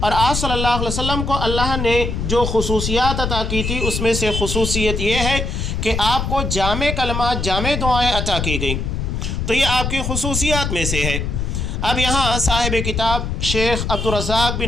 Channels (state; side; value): noise; left; rumble, 2 dB below the sound